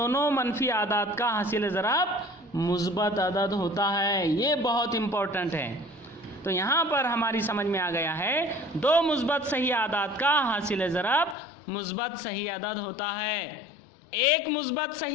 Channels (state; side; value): drops out; right; at 11.4 s